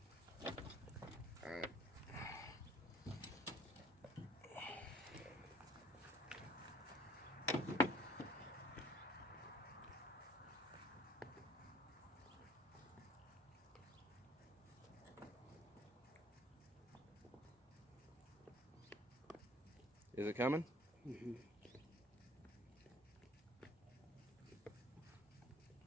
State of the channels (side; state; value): both; normal; correlation 0.55